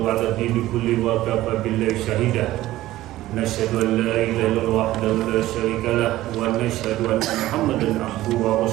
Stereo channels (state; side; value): quieter; left; 15.7 dB